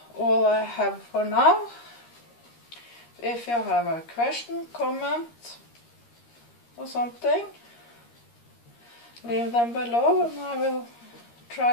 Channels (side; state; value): right; late; 13 ms